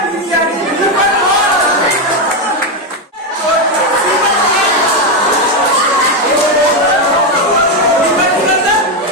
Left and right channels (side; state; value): both; normal; correlation 0.07